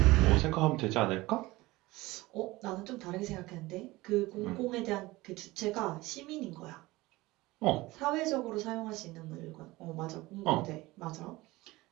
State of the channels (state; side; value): quieter; left; 20.0 dB